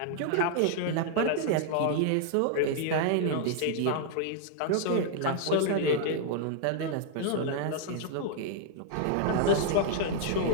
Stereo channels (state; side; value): different; both; correlation -0.01